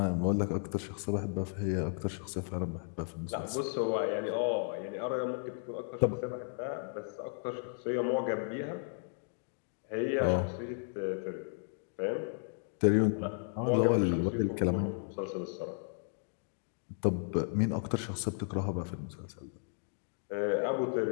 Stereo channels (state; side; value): silent; right; 55 dB below the other